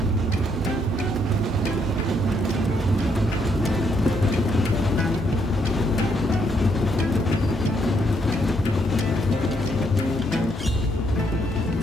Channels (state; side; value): normal; both; correlation 0.73